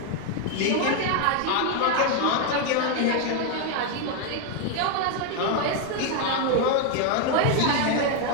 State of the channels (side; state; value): both; different; correlation 0.01